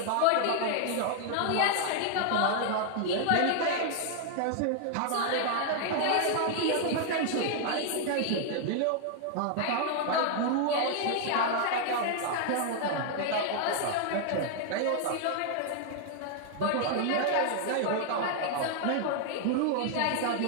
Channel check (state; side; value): different; both; correlation 0.00